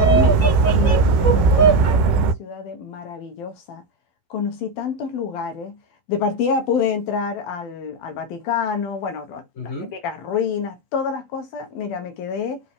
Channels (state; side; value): late; right; 10 ms